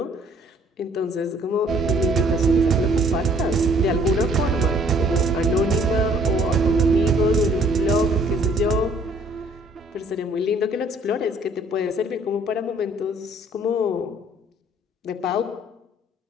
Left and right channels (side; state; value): both; normal; correlation 0.59